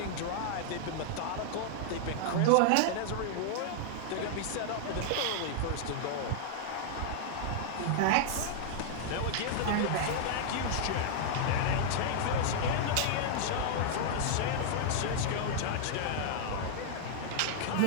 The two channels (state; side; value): different; both; correlation -0.01